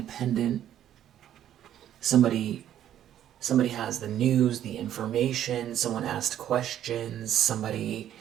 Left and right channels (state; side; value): quieter; left; 11.1 dB